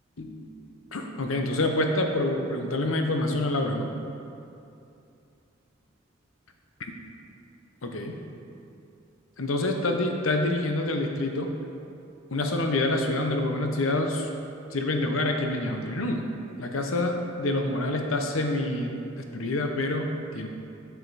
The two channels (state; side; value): normal; both; correlation 0.31